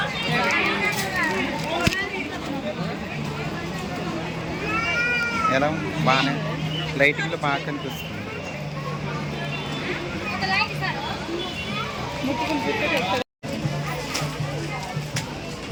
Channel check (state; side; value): identical; both; correlation 1.00